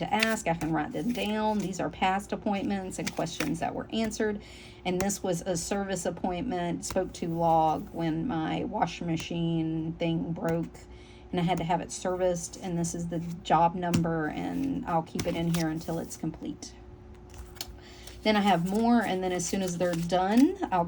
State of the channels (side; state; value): both; identical; correlation 1.00